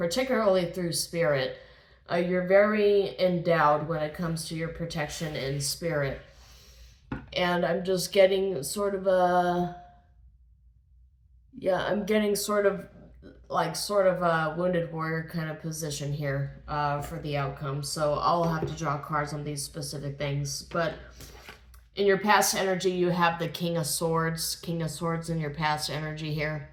through spirit. You're very endowed when it comes to your protection in spirit. And I'm just getting sort of a, yeah, I'm getting sort of a wounded warrior kind of position here for the outcome. So I'll have to draw cards on these specific things. But in your past energy, you have the King of Swords in your past energy here.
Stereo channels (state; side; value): identical; both; correlation 1.00